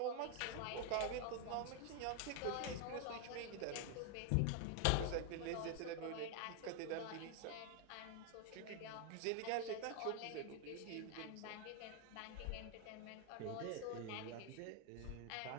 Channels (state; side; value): different; both; correlation 0.01